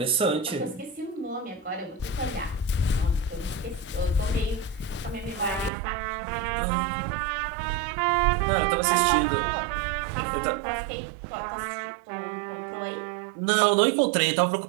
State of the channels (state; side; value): drops out; left; at 5.7 s